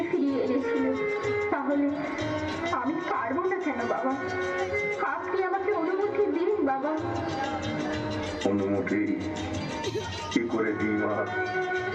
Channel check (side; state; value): both; identical; correlation 1.00